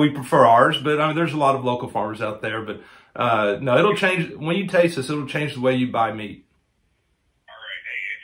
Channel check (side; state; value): both; identical; correlation 1.00